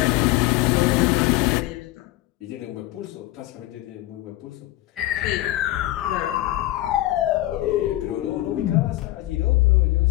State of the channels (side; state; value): right; quieter; 16.5 dB